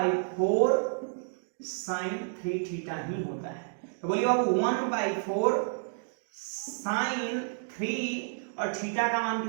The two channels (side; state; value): left; silent; digital silence